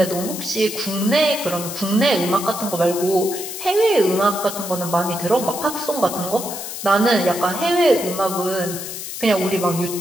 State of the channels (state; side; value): noise; left; hiss, 8 dB below the sound